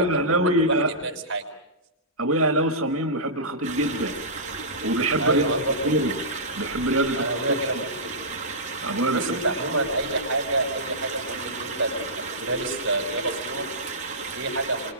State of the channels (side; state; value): both; normal; correlation -0.17